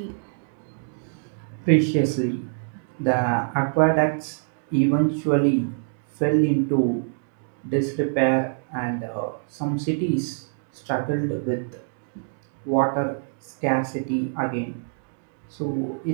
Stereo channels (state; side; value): silent; left; digital silence